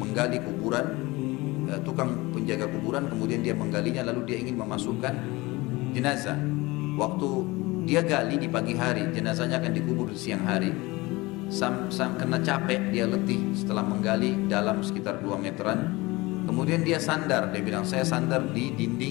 kuburan, tukang penjaga kuburan, kemudian dia menggalinya lalu dia ingin memasukkan jenazah. Waktu dia gali di pagi hari, jenazahnya akan dikubur di siang hari. Sam kena capek, dia letih setelah menggali dalam sekitar 2 meteran. Kemudian dia sandar, dia bilang saya sandar di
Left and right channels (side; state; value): right; quieter; 22.0 dB